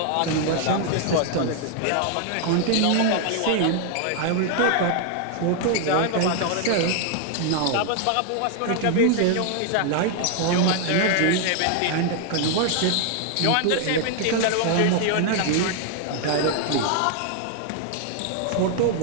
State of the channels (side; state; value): both; different; correlation 0.00